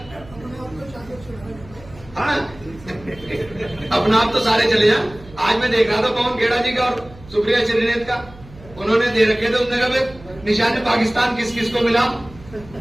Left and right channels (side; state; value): right; noise; hum, 20 dB below the sound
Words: हाँ अपना आप तो सारे चले जा। आज मैं देख रहा था पवन खेड़ा जी का और सुप्रिया श्रीनेत का, उन्होंने दे रखे थे, उन्होंने कहा निशान पाकिस्तान किस किस को मिला।